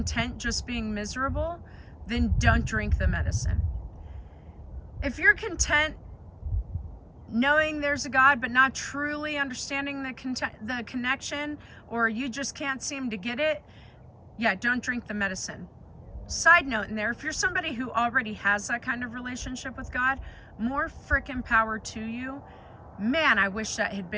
just being miserable, then don't drink the medicine. If you're content knowing there's a God but not truly understanding the connection, or you just can't seem to get it, yeah, don't drink the medicine. side note in there, if you're somebody who already has that kind of relationship with God, more frickin' power to you. Man, I wish that had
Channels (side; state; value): both; identical; correlation 1.00